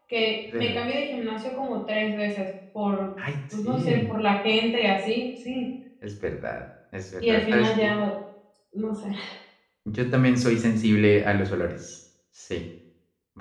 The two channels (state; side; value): identical; both; correlation 1.00